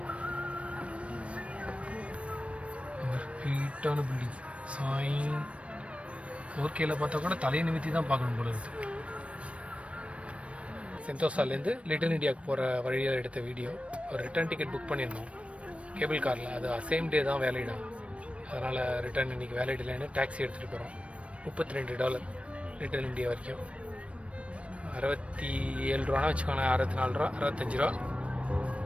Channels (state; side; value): late; left; 0.062 ms